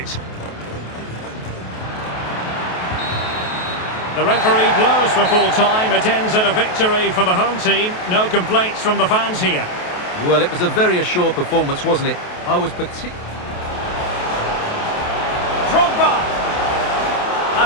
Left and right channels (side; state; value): right; late; 28 ms